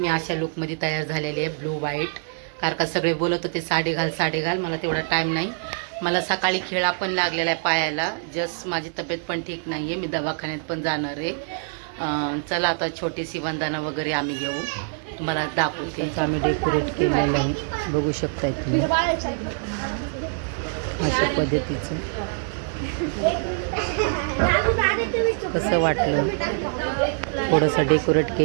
अशा लुकमध्ये तयार झालेली आहे, ब्लू व्हाईट. कारण का सगळे बोलत होते साडी घाल साडी घाल, मला तेवढा टाईम नाही. मला सकाळी खेळा पण लागलेला आहे पायाला. जस्ट माझी तब्येत पण ठीक नाही आहे, मी दवाखान्यात पण जाणार आहे. चला आता छोटीशी वंदना वगैरे आम्ही घेऊ, तुम्हाला दाखवते. आम्ही डेकोरेट केलेलं आहे, बघू शकताय तुम्ही अशा पद्धतीचं. कसं वाटलं, थोडंसं डेकोरेट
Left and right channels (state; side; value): silent; left; 62 dB below the other